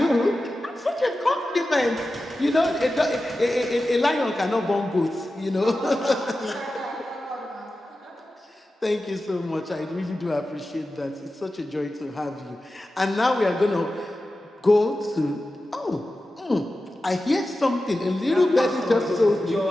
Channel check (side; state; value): both; normal; correlation 0.93